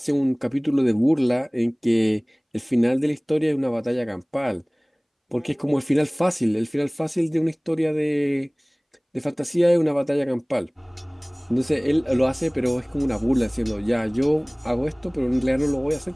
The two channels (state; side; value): identical; both; correlation 1.00